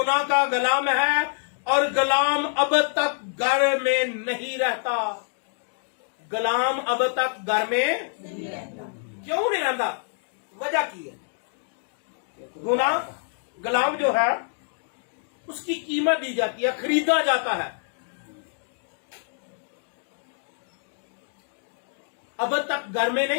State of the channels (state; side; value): silent; right; digital silence